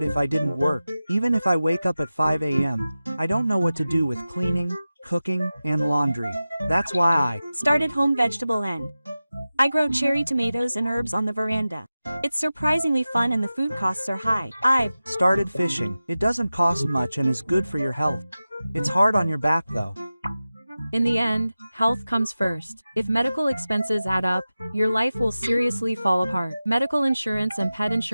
if I didn't work. Even if I wake up at 5 a.m., I don't know what to do with cleaning, cooking, and laundry. That's why I started home vegetable and I grow cherry tomatoes and herbs on the veranda. It's surprisingly fun and the food costs are high. I've started fishing. It doesn't cost much and is good for your health. It's hard on your back though. In the end, health comes first. If medical expenses add up, your life will seriously fall apart. Medical insurance and pet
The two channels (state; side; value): inverted; both; correlation -0.95